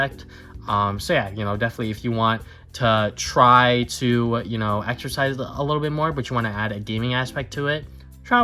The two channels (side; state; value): both; identical; correlation 1.00